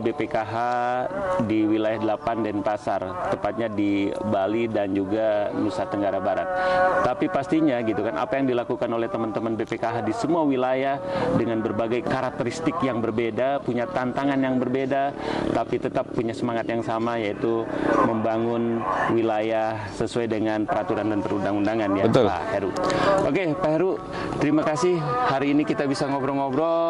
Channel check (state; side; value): identical; both; correlation 1.00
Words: di wilayah 8 Denpasar, tepatnya di Bali dan juga Nusa Tenggara Barat. Tapi pastinya gitu kan, apa yang dilakukan oleh teman-teman BPKH di semua wilayah dengan berbagai karakteristik yang berbeda, punya tantangan yang berbeda, tapi tetap punya semangat yang sama, yaitu membangun wilayah sesuai dengan peraturan dan perundang-undangan ya. Betul. Pak Heru. Oke, Pak Heru, terima kasih hari ini kita bisa